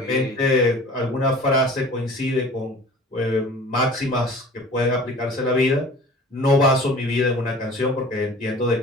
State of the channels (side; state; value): both; normal; correlation 0.44